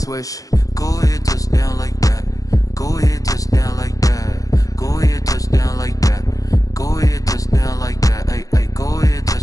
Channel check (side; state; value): right; late; 0.17 ms